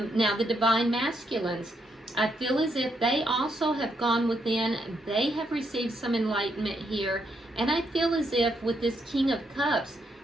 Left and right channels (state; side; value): normal; both; correlation 0.77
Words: Now, the divine masculines, I feel as if they also have gone within. They have received some enlightenment here. And I feel as if with this King of Cups,